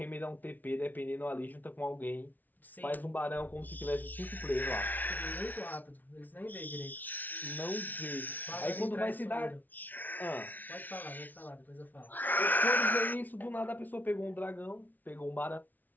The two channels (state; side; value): late; right; 0.083 ms